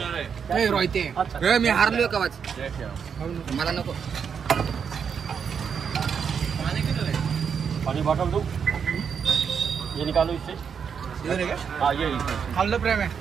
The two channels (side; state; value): left; quieter; 6.9 dB